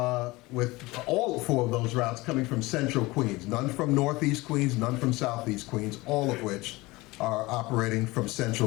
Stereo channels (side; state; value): right; quieter; 21.6 dB